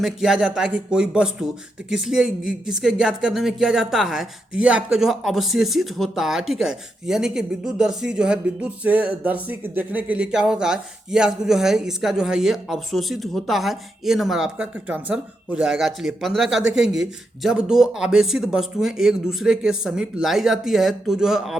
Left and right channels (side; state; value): both; normal; correlation 0.84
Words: किया जाता है कि कोई वस्तु, तो किसके ज्ञात करने में किया जाता है, तो ये आपका जो है अवशेषित होता है। ठीक है, यानी कि विद्युत दर्शी जो है विद्युत से दर्शी देखने के लिए क्या होता है, ये आपको जो है इसका जो है ये अवशोषित होता है। ए नंबर आपका करेक्ट आंसर हो जाएगा। चलिए 15 का देखेंगे, जब दो आवेशित वस्तुएं एक दूसरे के समीप लाई जाती है तो जो है